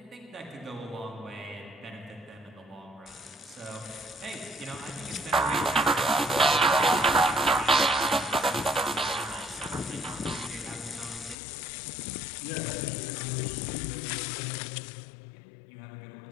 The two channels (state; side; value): drops out; right; at 11.4 s